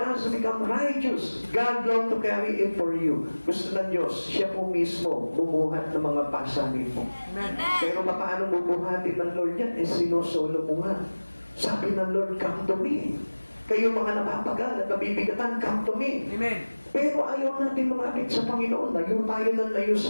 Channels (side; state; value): both; inverted; correlation -1.00